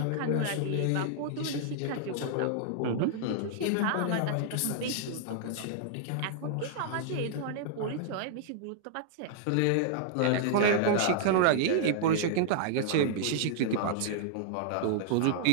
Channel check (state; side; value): different; both; correlation -0.01